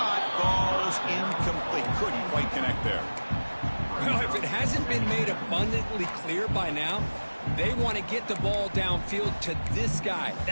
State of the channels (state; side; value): inverted; both; correlation -1.00